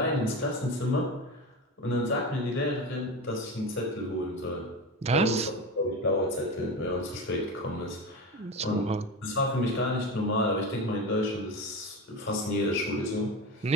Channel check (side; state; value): both; normal; correlation 0.24